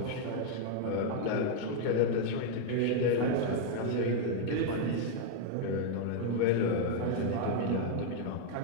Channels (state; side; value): different; both; correlation 0.00